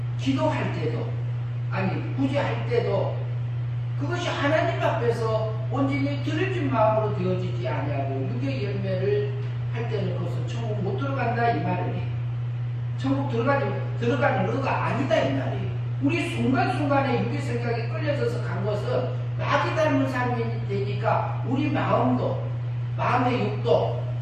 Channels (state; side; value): identical; both; correlation 1.00